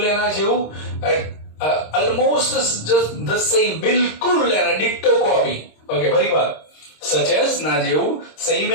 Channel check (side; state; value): right; late; 26 ms